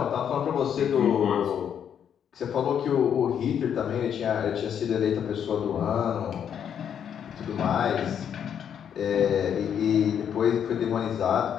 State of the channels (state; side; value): quieter; right; 8.6 dB